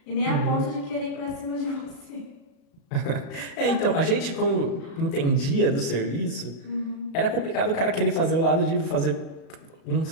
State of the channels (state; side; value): late; right; 36 ms